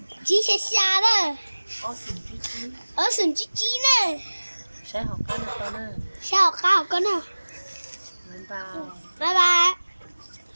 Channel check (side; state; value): both; inverted; correlation -1.00